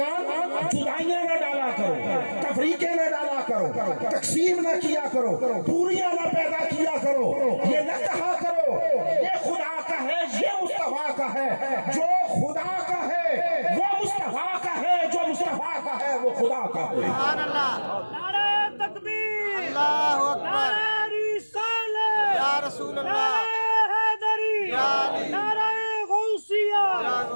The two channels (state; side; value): inverted; both; correlation -1.00